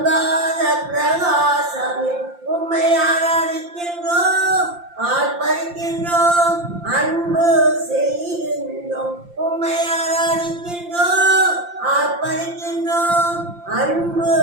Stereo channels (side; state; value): left; late; 5.8 ms